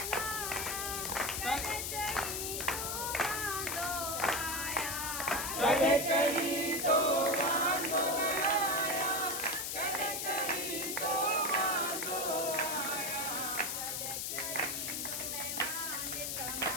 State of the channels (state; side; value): noise; left; hiss, 2 dB below the sound